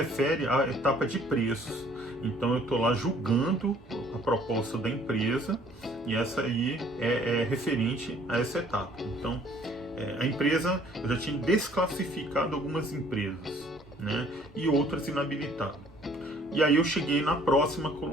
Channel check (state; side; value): normal; both; correlation 0.58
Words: à etapa de preços. Então eu estou lá julgando a proposta da empresa e essa aí é referente a essa etapa. Então a empresa, eu já tinha desclassificado algumas empresas, né? E outras inabilitado. E aí eu cheguei na próxima